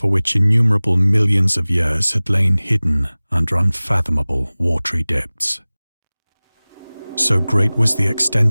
which innumerable millions of years had lain hidden under unfathomable watery depths. So great was the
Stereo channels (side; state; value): both; inverted; correlation -0.99